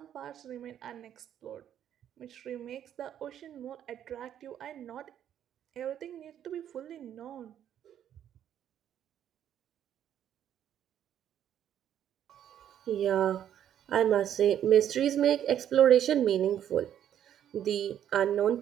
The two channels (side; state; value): left; quieter; 10.2 dB